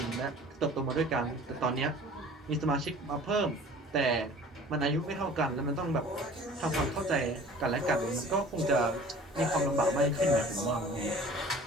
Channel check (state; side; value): normal; both; correlation 0.46